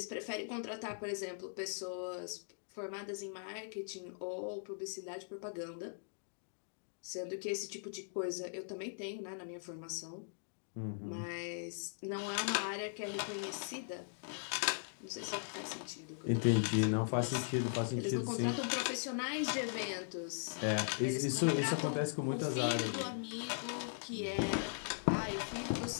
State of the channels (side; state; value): right; silent; digital silence